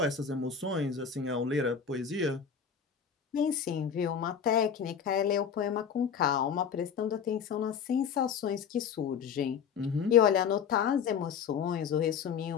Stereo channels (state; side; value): quieter; right; 7.2 dB